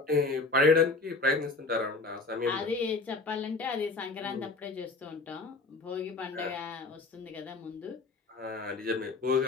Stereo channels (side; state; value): right; quieter; 3.7 dB